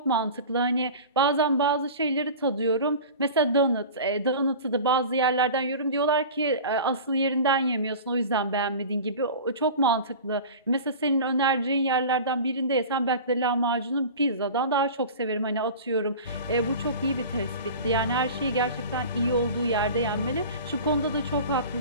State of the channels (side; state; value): both; inverted; correlation -0.35